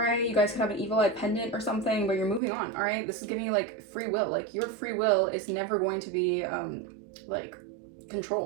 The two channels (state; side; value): drops out; left; at 2.4 s